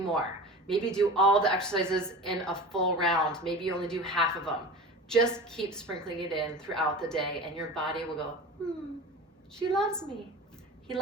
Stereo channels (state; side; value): normal; both; correlation 0.33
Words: Maybe do all the exercises in a full round. Maybe you only do half of them. Just keep sprinkling it in throughout the day and your body will go, she loves me. He